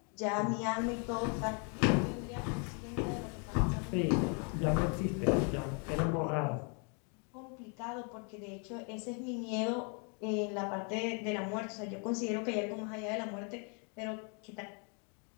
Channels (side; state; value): right; quieter; 37.6 dB